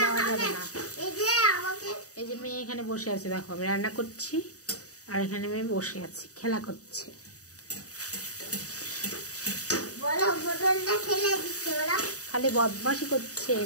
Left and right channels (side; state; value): right; late; 0.66 ms